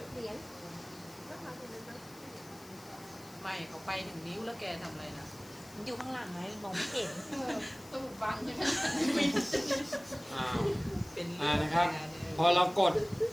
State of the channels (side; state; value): left; noise; hiss, 21 dB below the sound